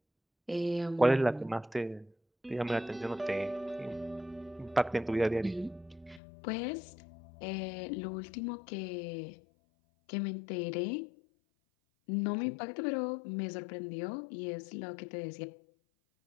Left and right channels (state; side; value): drops out; right; at 6.2 s